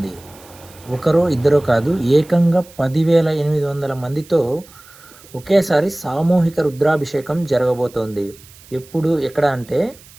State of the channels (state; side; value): noise; right; hiss, 23 dB below the sound